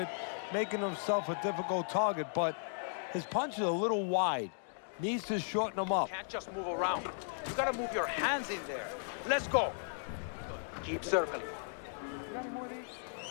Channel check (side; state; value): right; silent; digital silence